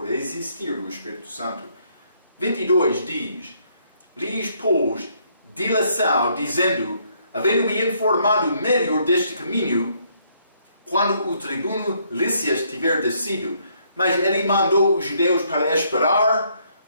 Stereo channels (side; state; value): both; inverted; correlation -0.70